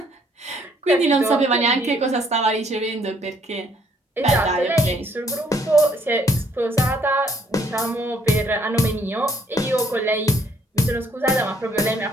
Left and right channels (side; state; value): both; normal; correlation 0.65